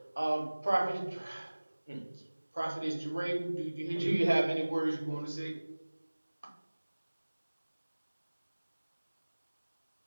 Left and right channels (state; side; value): inverted; both; correlation -1.00